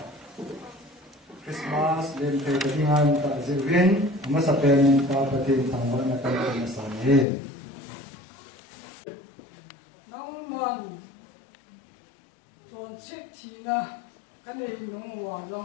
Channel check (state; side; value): drops out; right; at 7.2 s